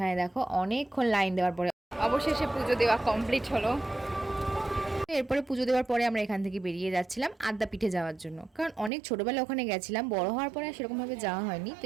দেখো অনেকক্ষণ লাইন দেওয়ার পরে অবশেষে পুজো দেওয়া কমপ্লিট হলো। এরপরে পুজো দেওয়ার পরে আমরা এখান থেকে বেরিয়ে যাচ্ছিলাম আদ্যাপীঠে যাওয়ার জন্য, কারণ অনেক ছোটোবেলা ওখানে গেছিলাম, বড় হওয়ার পরে সেরকমভাবে যাওয়া হয়নি। তো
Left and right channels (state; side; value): drops out; left; at 8.9 s